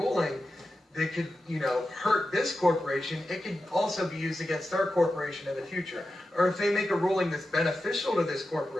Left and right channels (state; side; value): normal; both; correlation 0.91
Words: that could, hurt this corporation, it could also be used against their corporation in the future. Or if they make a ruling that's beneficial to this